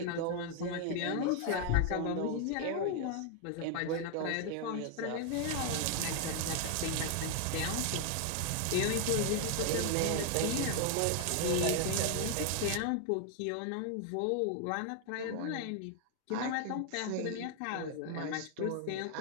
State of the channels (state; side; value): different; both; correlation 0.00